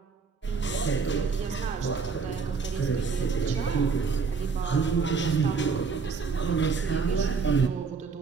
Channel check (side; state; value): left; quieter; 5.1 dB